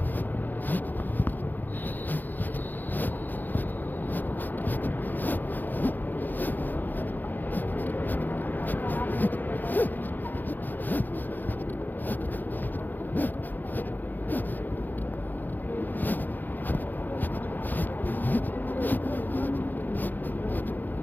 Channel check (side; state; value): right; late; 0.087 ms